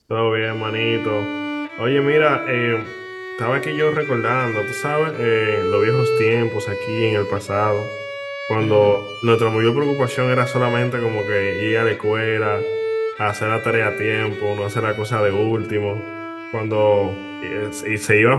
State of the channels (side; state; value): both; identical; correlation 1.00